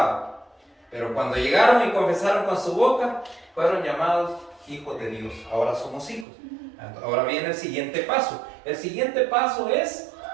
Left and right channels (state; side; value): drops out; left; at 6.2 s